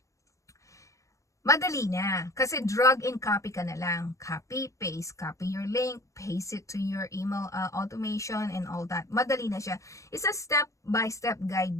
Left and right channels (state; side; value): late; right; 0.15 ms